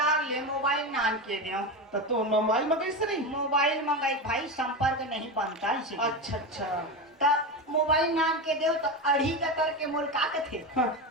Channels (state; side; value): normal; both; correlation 0.19